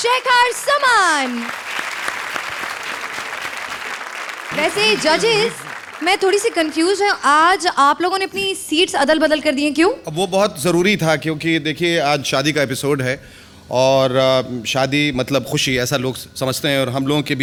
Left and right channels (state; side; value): identical; both; correlation 1.00